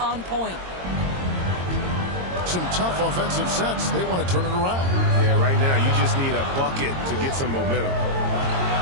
point. Some tough offensive sets. They want to turn it around. Yeah, right now you just need a bucket to get some momentum.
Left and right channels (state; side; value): late; left; 22 ms